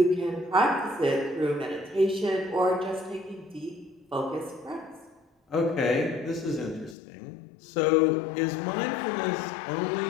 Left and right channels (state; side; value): drops out; right; at 7.0 s